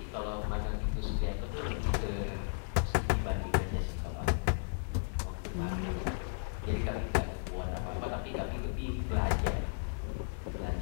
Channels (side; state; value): right; silent; digital silence